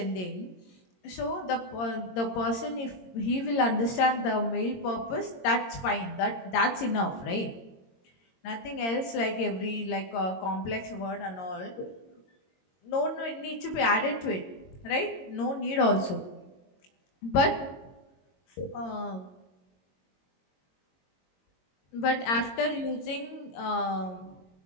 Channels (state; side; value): late; right; 22 ms